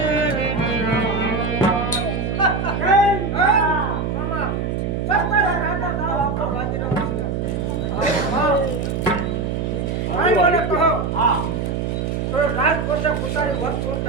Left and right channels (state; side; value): noise; right; hum, 1 dB below the sound